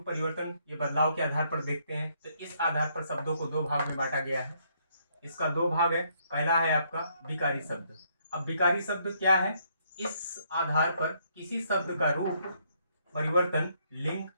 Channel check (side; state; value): both; inverted; correlation -0.71